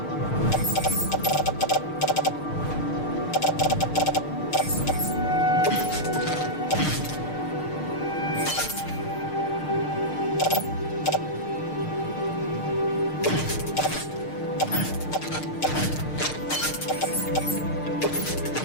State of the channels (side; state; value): right; late; 6.5 ms